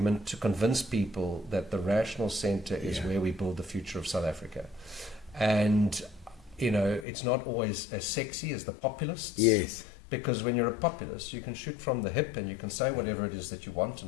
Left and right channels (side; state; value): right; drops out; at 7.1 s